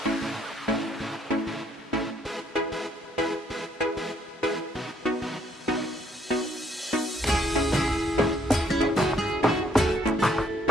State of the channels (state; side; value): normal; both; correlation 0.68